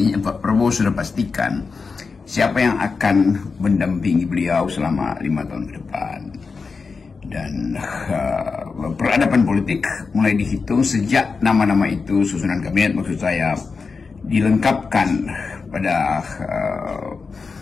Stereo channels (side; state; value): right; quieter; 4.7 dB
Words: Pak Prabowo sudah pastikan siapa yang akan mendampingi beliau selama 5 tahun ke depan. Dan peradaban politik mulai dihitung sejak nama-nama itu, susunan kabinet maksud saya, dilengkapkan pada